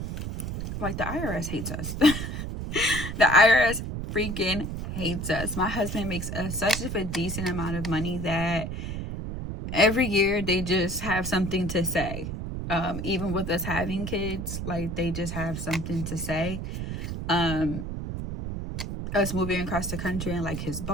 like the IRS hates us. The IRS freaking hates us. My husband makes such a decent amount of money that every year they just have something to say. Even with us having kids, like they just have something to say. Us moving across the country and like his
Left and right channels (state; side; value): noise; right; rumble, 5 dB below the sound